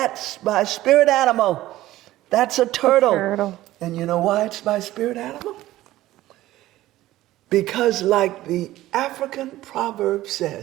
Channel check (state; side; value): quieter; left; 15.6 dB